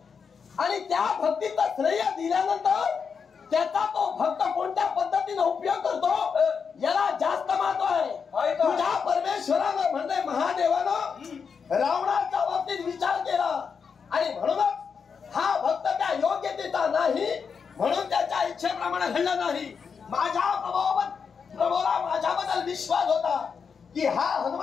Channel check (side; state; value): right; quieter; 6.1 dB